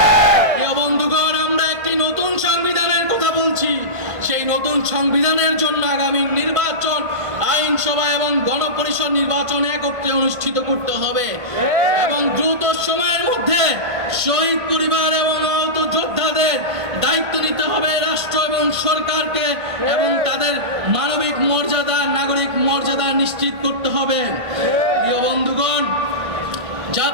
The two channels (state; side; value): late; left; 1.6 ms